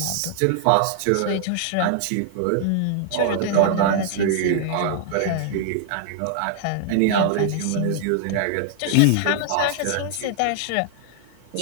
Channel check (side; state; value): both; different; correlation -0.01